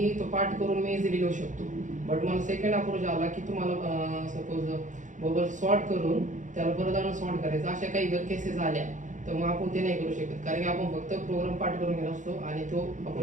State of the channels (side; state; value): left; late; 0.36 ms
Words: तो पाठ करून मी इझिली लिहू शकतो बट मला सेकंड अप्रोच आला की तुम्हाला सपोज बबल सॉर्ट करून त्याला परत आणून सॉर्ट करायचं अशा काही जर केसेस आल्या तर मग आपण ते नाही करू शकत कारण की आपण फक्त प्रोग्राम पाठ करून घेत असतो आणि तो